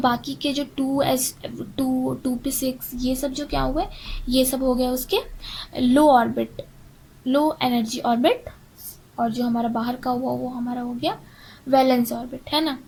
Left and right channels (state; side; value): identical; both; correlation 1.00